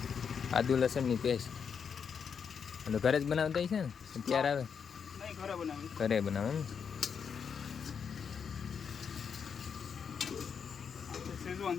આદુ લસણની પેસ્ટ. તો ઘરે જ બનાવતા છે ને? અત્યારે આવે ઘરે બનાવે ને?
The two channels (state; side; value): quieter; right; 6.7 dB